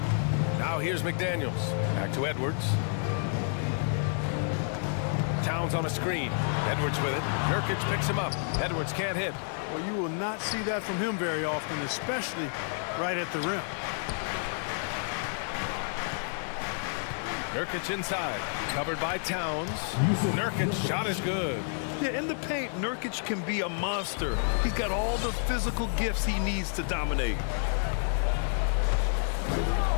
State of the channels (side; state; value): right; silent; 58 dB below the other